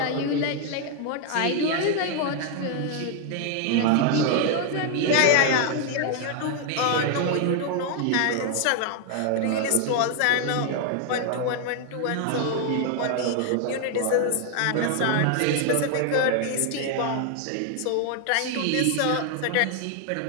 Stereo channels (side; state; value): both; different; correlation 0.00